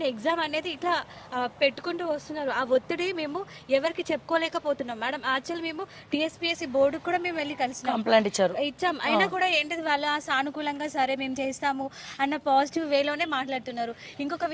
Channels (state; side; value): identical; both; correlation 1.00